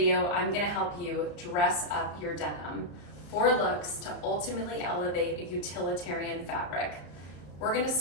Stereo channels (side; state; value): right; late; 34 ms